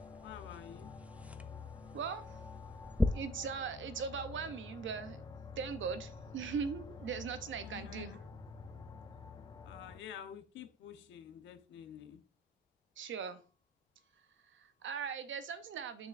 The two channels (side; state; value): both; normal; correlation 0.47